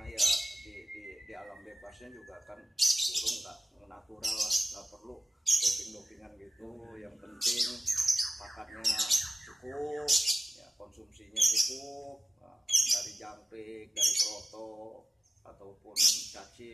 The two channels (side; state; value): both; normal; correlation 0.96